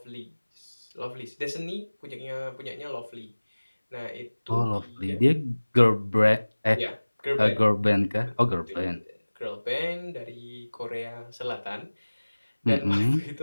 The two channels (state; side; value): inverted; both; correlation -1.00